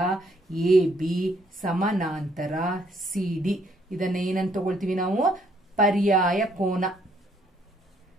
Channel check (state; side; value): normal; both; correlation 0.68